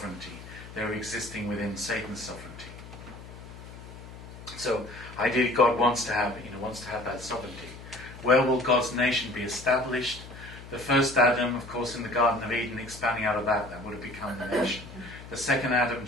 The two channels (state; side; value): noise; left; hum, 15 dB below the sound